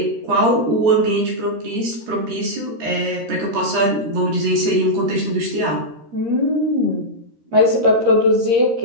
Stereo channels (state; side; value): late; left; 13 ms